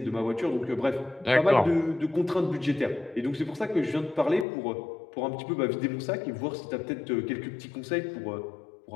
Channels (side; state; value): right; drops out; at 4.5 s